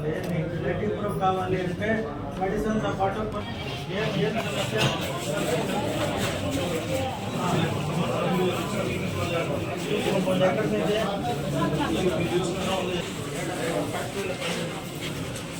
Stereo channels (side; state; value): both; identical; correlation 1.00